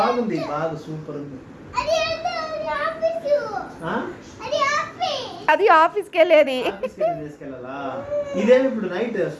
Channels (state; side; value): identical; both; correlation 1.00